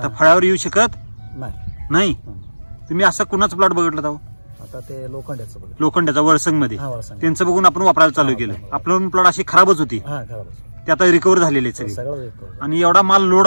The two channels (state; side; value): inverted; both; correlation -1.00